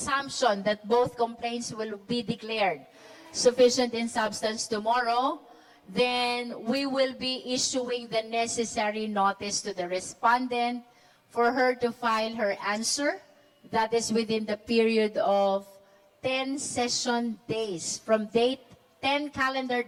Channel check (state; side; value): identical; both; correlation 1.00